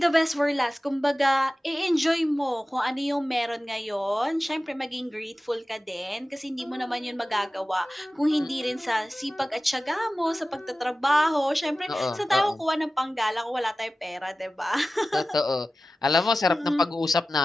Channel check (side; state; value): both; normal; correlation 0.96